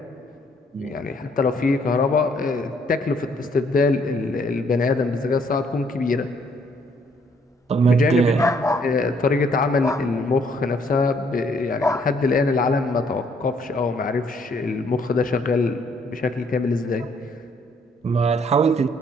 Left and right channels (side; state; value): both; normal; correlation 0.66